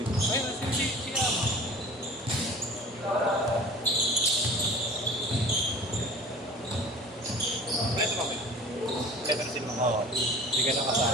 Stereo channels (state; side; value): normal; both; correlation 0.43